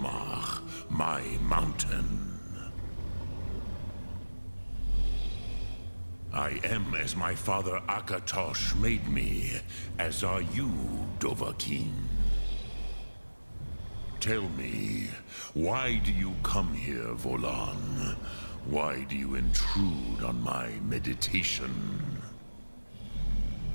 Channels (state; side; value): inverted; both; correlation -1.00